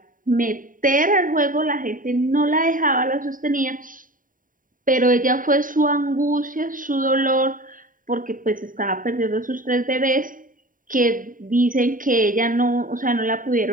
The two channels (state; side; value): late; left; 0.39 ms